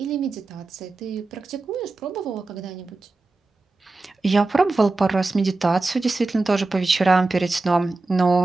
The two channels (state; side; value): quieter; left; 3.3 dB